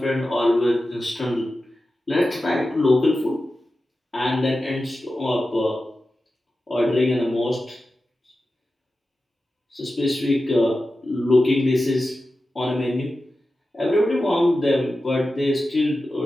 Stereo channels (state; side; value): normal; both; correlation 0.93